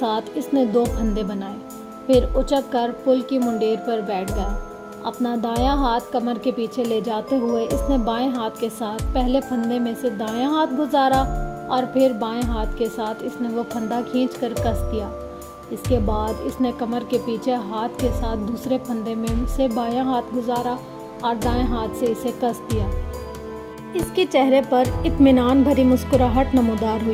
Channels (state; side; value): identical; both; correlation 1.00